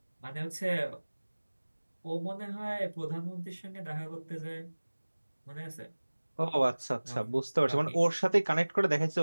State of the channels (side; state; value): both; inverted; correlation -1.00